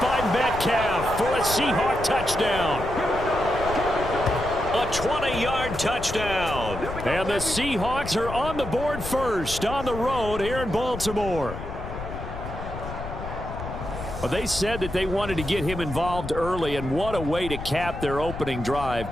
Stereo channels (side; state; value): left; noise; rumble, 9 dB below the sound